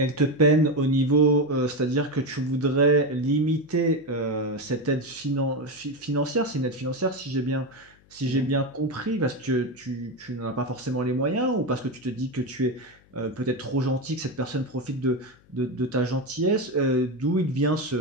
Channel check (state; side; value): noise; left; hum, 30 dB below the sound